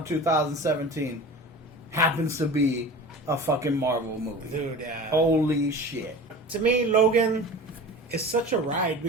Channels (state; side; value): normal; both; correlation 0.36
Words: 2017 happens to be a fucking Marvel movie. Dude, Holy shit. To me, Logan is such a ride